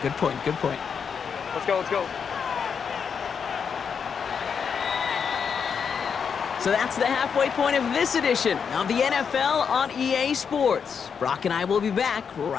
good point, good point. Let's go, let's go. So that's the halfway point of this edition of the NFL on EA Sports. Brock and I will be back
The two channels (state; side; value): quieter; right; 6.6 dB